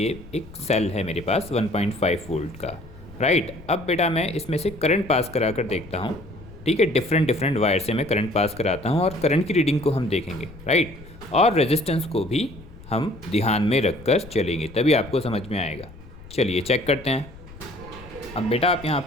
एक सेल है मेरे पास 1.5 वोल्ट का। राइट, अब बेटा मैं इसमें से करंट पास करा कर देखता हूँ। ठीक है, डिफरेंट वायर से मैं करंट पास कराता हूँ और करंट की रीडिंग को हम देखेंगे। राइट, और रेजिस्टेंस को भी हम ध्यान में रखकर चलेंगे, तभी आपको समझ में आएगा। चलिए चेक करते हैं। अब बेटा आप यहाँ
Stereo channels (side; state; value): left; noise; rumble, 18 dB below the sound